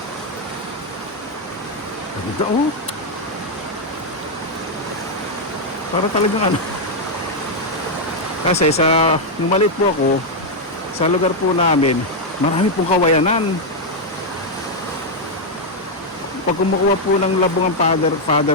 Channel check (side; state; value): both; normal; correlation 0.00